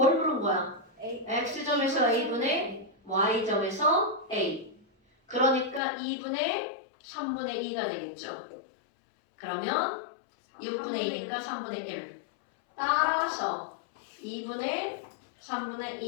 물은 거야? X점에서 A분의 Y점에서 A. 그러니까 2분의 3분의 2가 되겠죠. 그러면 6분의 2니까 3분의 1. 따라서 2분의 3분의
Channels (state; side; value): drops out; right; at 5.8 s